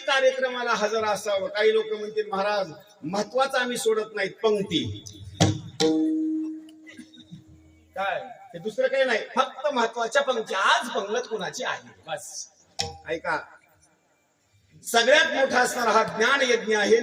कार्यक्रमाला हजर असावं. काही लोक म्हणतील महाराज महत्वाचं आम्ही सोडत नाहीत, पंक्ती. काय ते दुसरं काही नाही, फक्त महत्वाच्या पंक्ती. आज पंगत कुणाची आहे बस. ऐका, सगळ्यात मोठा असणारा हा ज्ञान यज्ञ आहे.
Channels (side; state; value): both; identical; correlation 1.00